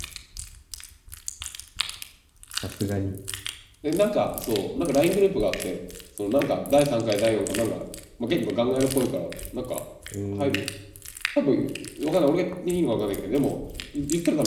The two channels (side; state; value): both; identical; correlation 1.00